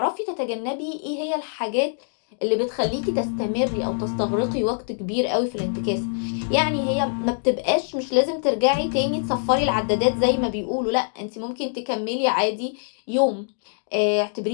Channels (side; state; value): right; silent; digital silence